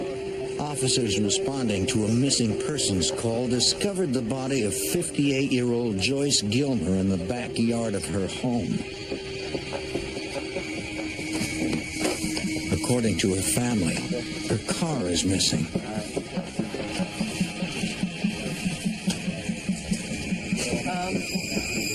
Officers responding to a missing persons call discovered the body of 58-year-old Joyce Gilmer in the backyard of her home. According to her family, her car is missing.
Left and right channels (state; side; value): identical; both; correlation 1.00